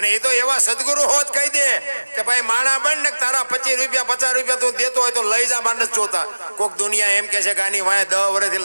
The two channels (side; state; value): both; inverted; correlation -1.00